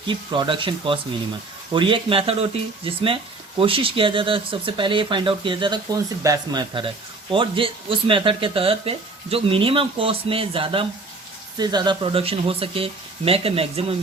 keep production cost minimum. और ये एक method होती है जिसमें कोशिश किया जाता है, सबसे पहले ये फाइंड आउट किया जाता है कौन सी बेस्ट मेथड है, और उस मेथड के तहत पे जो मिनिमम कॉस्ट में ज़्यादा से ज़्यादा प्रोडक्शन हो सके, make a maximum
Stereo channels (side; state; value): left; quieter; 3.5 dB